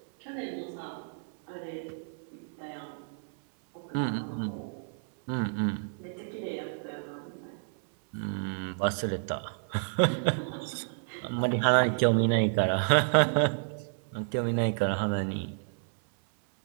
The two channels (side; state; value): left; silent; 57 dB below the other